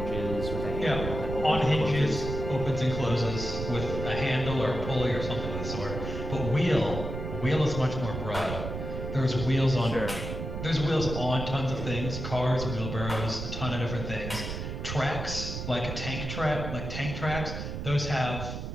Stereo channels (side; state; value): right; noise; rumble, 5 dB below the sound